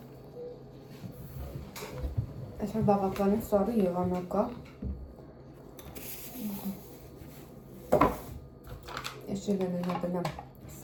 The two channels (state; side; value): identical; both; correlation 1.00